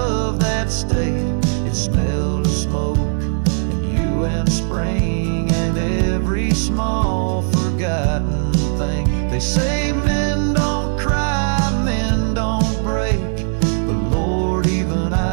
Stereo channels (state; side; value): silent; left; digital silence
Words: that stayed. It smelled of smoke and you and spring, and every small forgotten thing. They say men don't cry, men don't break, but Lord, even